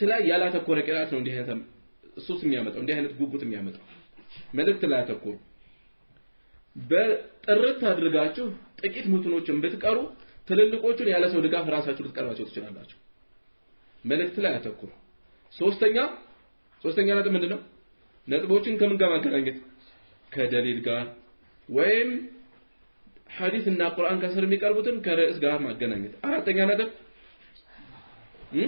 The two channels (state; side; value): inverted; both; correlation -1.00